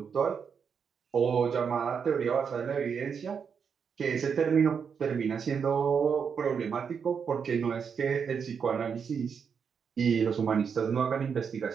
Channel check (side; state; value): left; quieter; 6.6 dB